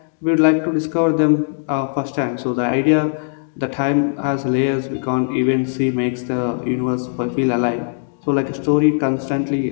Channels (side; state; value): right; silent; digital silence